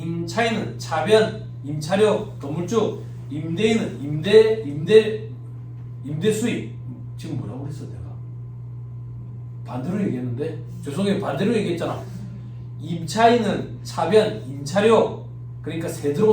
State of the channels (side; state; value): both; identical; correlation 1.00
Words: 차변, 임차료, 건물주, 임대인은 임대 수입. 지금 뭐라고 그랬어 내가? 반대로 얘기했는데 죄송해요. 반대로 얘기했잖아. 임차인은 차변, 임차료, 그러니까 새